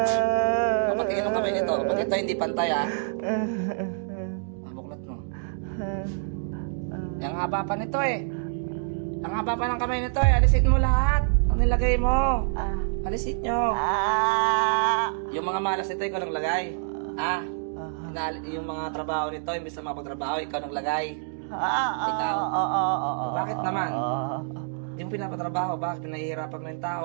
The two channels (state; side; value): silent; left; digital silence